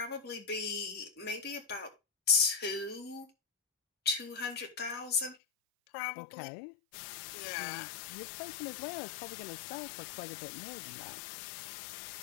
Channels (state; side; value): drops out; right; at 5.4 s